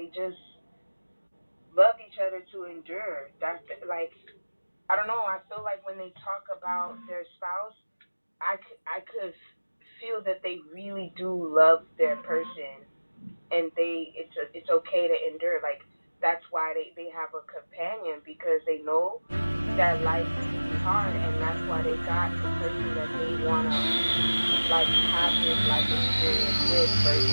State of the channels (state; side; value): inverted; both; correlation -1.00